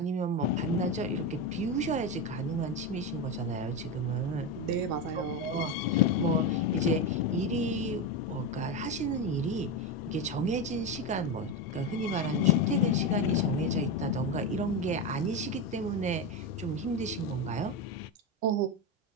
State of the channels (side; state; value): both; normal; correlation 0.14